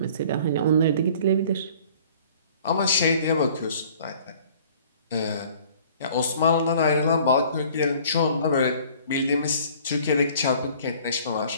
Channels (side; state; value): both; inverted; correlation -0.52